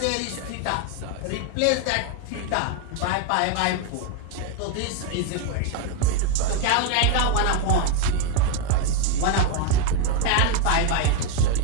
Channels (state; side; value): different; both; correlation 0.02